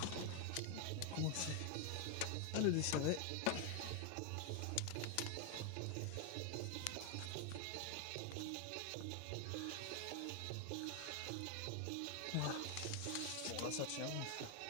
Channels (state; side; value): different; both; correlation 0.01